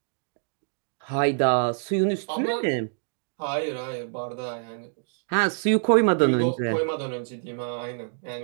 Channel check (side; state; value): left; silent; digital silence